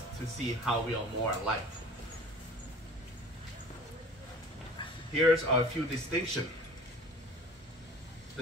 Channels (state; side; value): normal; both; correlation 0.44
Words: to see how we are more alike. Here's a few distinctions.